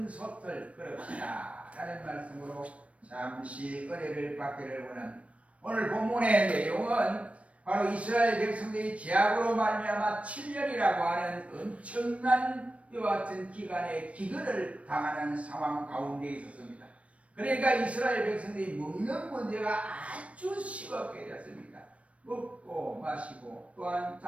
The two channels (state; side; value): late; left; 0.064 ms